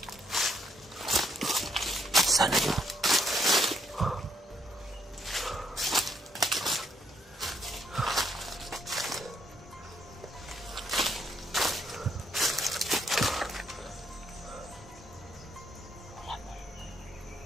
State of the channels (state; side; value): normal; both; correlation 0.72